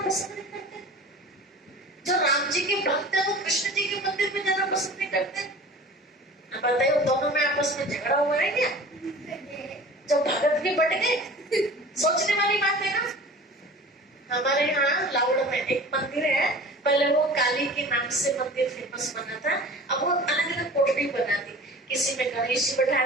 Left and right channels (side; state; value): both; normal; correlation 0.40